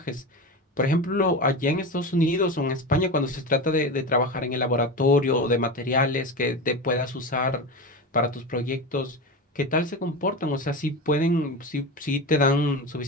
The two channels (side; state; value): both; normal; correlation 0.23